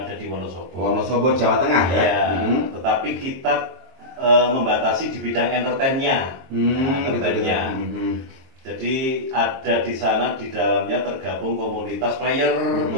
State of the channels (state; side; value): late; left; 23 ms